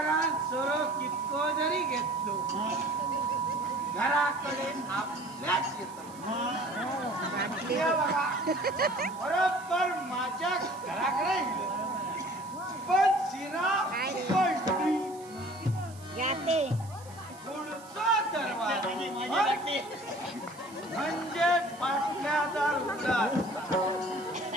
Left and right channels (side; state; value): right; noise; hiss, 21 dB below the sound